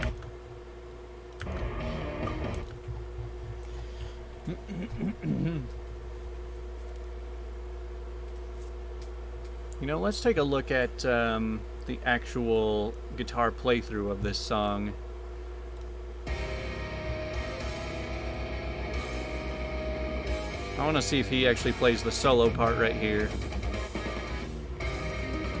You know, let's take a look at the actual guitar playthrough of this song. I want to see if he actually plays the solo part right here.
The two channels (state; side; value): identical; both; correlation 1.00